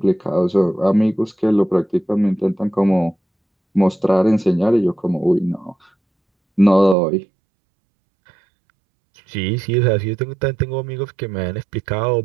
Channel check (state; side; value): drops out; left; at 7.0 s